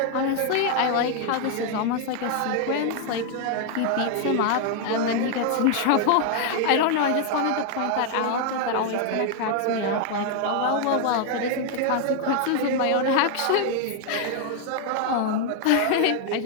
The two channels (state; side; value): different; both; correlation 0.00